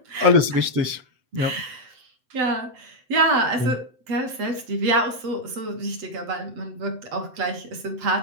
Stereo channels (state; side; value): late; left; 7.9 ms